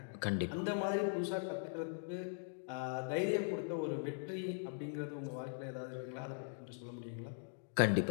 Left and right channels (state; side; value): silent; right; digital silence